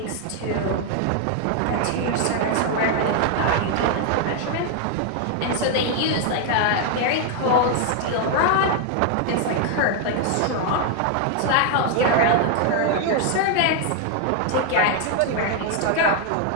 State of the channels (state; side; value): different; both; correlation 0.00